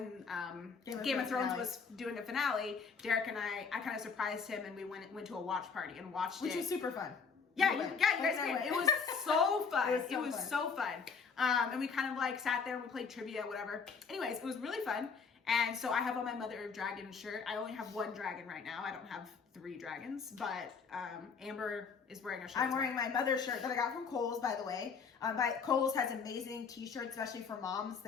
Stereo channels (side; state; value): right; quieter; 5.5 dB